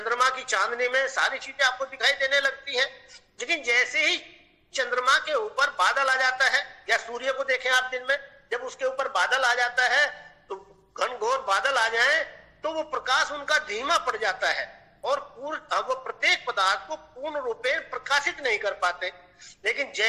की चांदनी में सारी चीजें आपको दिखाई देने लगती हैं, लेकिन जैसे ही चंद्रमा के ऊपर बादल आ जाता है, या सूर्य को देखें आप दिन में, जब उसके ऊपर बादल आ जाता है तो घनघोर बादल आ जाए तो वो प्रकाश उनका धीमा पड़ जाता है और वो प्रत्येक पदार्थ को पूर्ण रूप में प्रकाशित नहीं कर पाते। लेकिन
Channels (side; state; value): both; identical; correlation 1.00